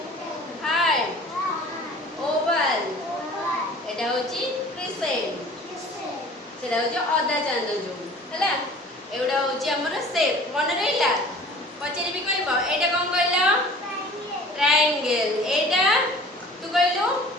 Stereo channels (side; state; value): both; normal; correlation 0.46